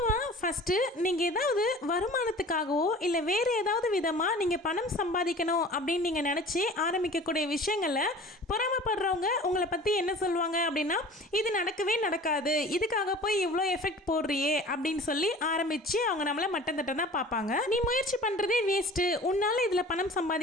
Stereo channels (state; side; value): normal; both; correlation 0.43